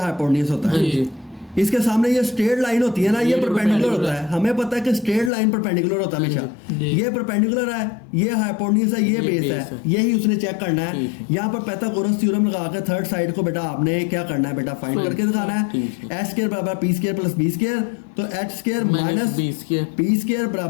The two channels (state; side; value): drops out; right; at 5.3 s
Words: होता है। इसके सामने ये स्ट्रेट लाइन होती है ना, ये परपेंडिकुलर होता है। हमें पता है कि स्ट्रेट लाइन परपेंडिकुलर होता है हमेशा। जी। ये परपेंडिकुलर है, ये हाइपोटेन्यूज है, ये बेस है, यही उसने चेक करना है। यहाँ पर पाइथागोरस थ्योरम लगा के थर्ड साइड को बेटा आपने क्या करना है बेटा, फाइंड करके दिखाना है। एच स्क्वायर बराबर P square plus B square, तो H square minus P square